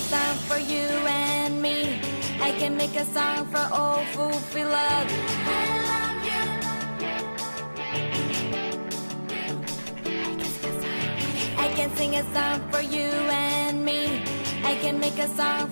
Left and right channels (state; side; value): inverted; both; correlation -1.00